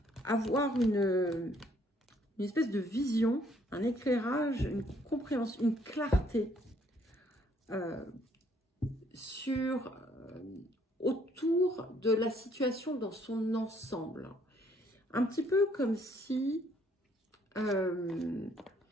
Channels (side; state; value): both; normal; correlation 0.65